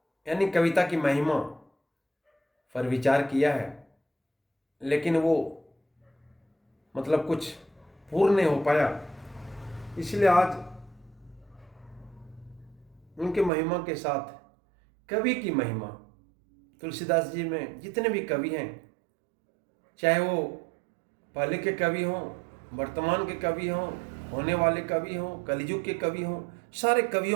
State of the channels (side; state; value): left; drops out; at 13.5 s